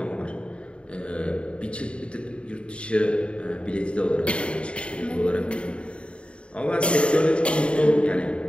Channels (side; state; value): right; late; 0.057 ms